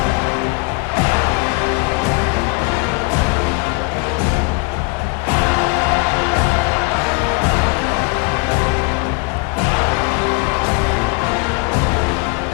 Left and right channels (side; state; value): right; quieter; 29.9 dB